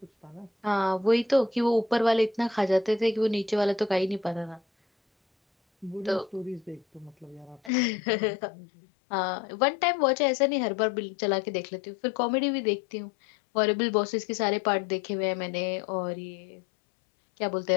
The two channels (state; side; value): drops out; right; at 7.7 s